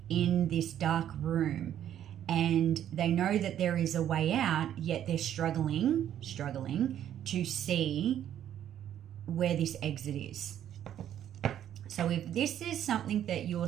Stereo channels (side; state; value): left; quieter; 10.7 dB